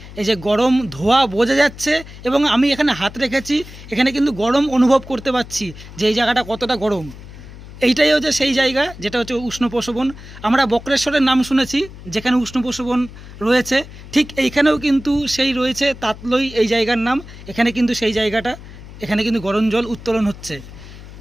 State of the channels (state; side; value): noise; left; hum, 16 dB below the sound